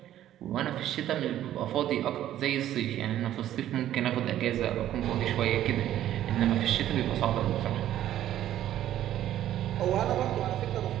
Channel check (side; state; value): left; quieter; 12.3 dB